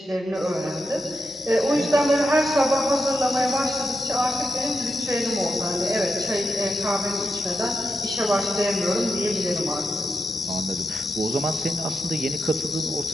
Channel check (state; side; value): normal; both; correlation 0.87